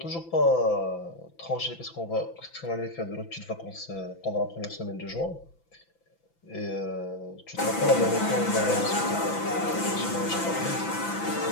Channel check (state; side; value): late; right; 6.0 ms